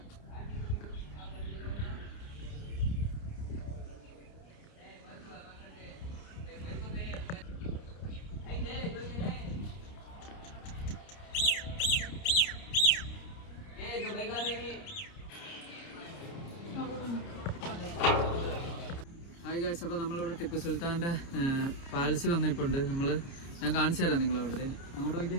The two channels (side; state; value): right; late; 29 ms